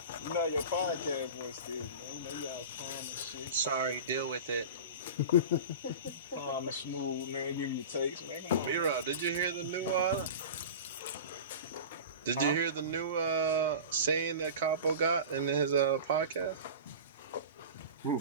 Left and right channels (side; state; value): both; inverted; correlation -0.32